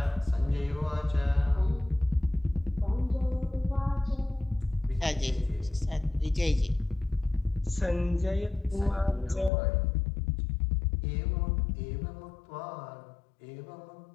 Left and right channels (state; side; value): drops out; right; at 9.5 s